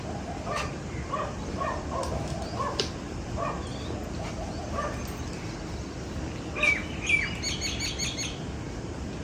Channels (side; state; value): both; identical; correlation 1.00